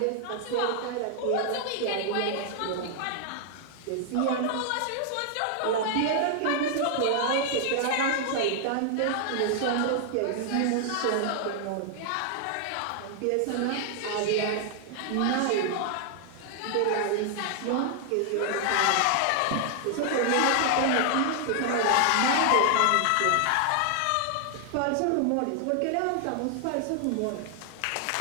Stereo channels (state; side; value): different; both; correlation 0.00